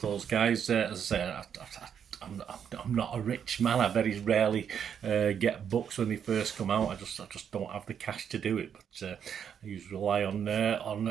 those guys. As I say, I'm not a rich man. I very rarely get books when they first come out. I just don't have the cash to do it. But I usually rely on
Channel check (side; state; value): left; quieter; 8.1 dB